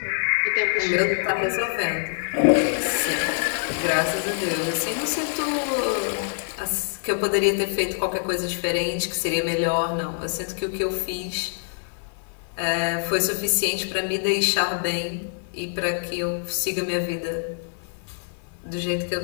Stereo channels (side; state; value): right; silent; digital silence